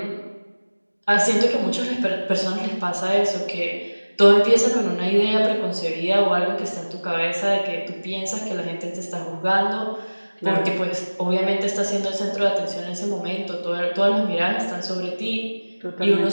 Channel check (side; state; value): both; inverted; correlation -1.00